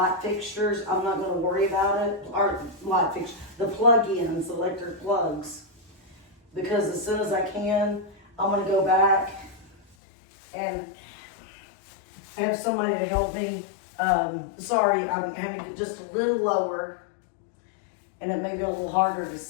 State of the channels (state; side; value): drops out; right; at 10.0 s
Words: fixtures, I'm not going to worry about it. Or light fixtures, the plug-ins, the electric plugs, because as soon as I can, I'm going to go back and have somebody to help me. Sorry, I'm having to get just a little lower, and it may be a little harder to